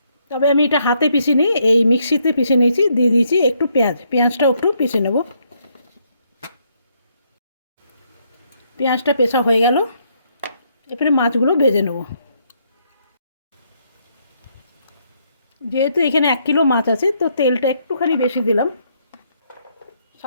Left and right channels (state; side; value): inverted; both; correlation -0.73